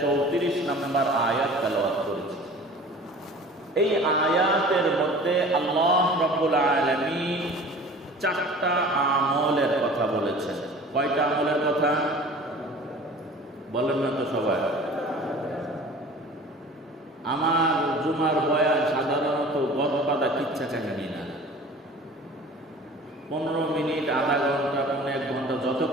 34 নম্বর আয়াত তেলাওয়াত করেছি। এই আয়াতের মধ্যে আল্লাহ রাব্বুল আলামিন 4টা আমলের কথা বলেছেন। কয়টা আমলের কথা বলেন না তো সবাই? আমার জুমার বয়ান সাধারণত গদবাদা কিচ্ছা কাহিনী না। 15 মিনিট, আধা ঘন্টা, 1 ঘন্টা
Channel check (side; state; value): both; normal; correlation 0.43